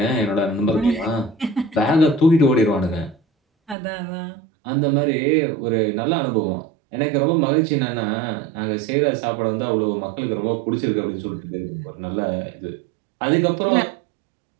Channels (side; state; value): left; drops out; at 3.8 s